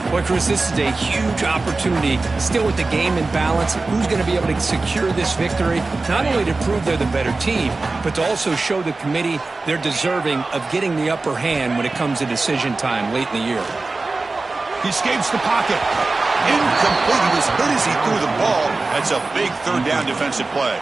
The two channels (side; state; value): left; quieter; 3.5 dB